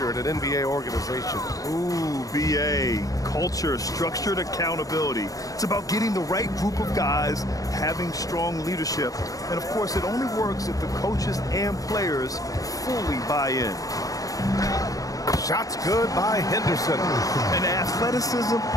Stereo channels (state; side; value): late; right; 0.17 ms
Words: at an NBA organization. Ooh, BA. Culture, structured accountability. It's about getting the right group of guys, having strong leadership. And, of course, it only works if the coaches and players fully buy in. Shots good by Henderson. And athleticism